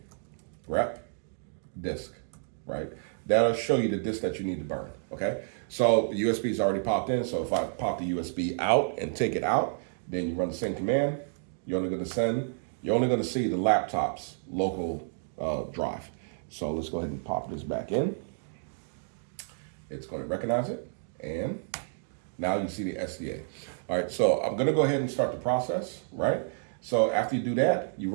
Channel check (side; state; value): left; silent; digital silence